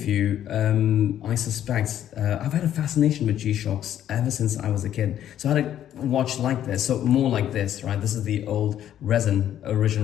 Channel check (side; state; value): right; quieter; 11.0 dB